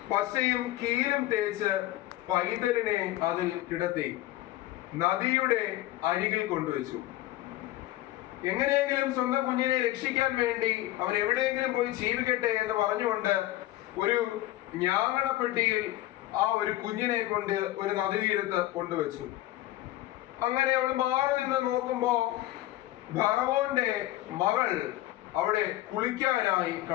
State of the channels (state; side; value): quieter; right; 16.0 dB